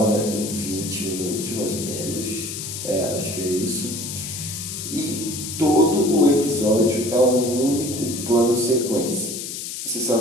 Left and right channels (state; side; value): noise; left; hiss, 7 dB below the sound